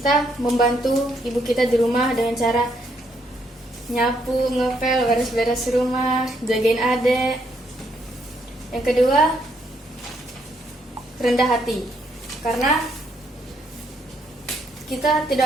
membantu ibu kita di rumah dengan cara nyapu, ngepel, beres-beres rumah, jagain adek. Yang kedua, rendah hati, karena kita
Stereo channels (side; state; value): both; normal; correlation 0.73